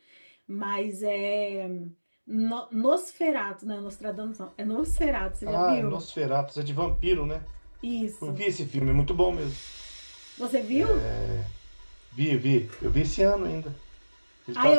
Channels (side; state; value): both; inverted; correlation -1.00